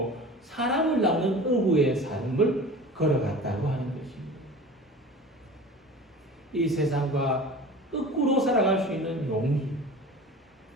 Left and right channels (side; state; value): both; normal; correlation 0.38